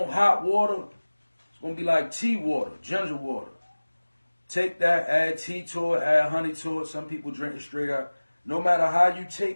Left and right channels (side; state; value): both; inverted; correlation -1.00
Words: hot water. It's going to be like tea water, ginger water. Take that, add tea to it, add honey to it. Some people drink it straight up. No matter how you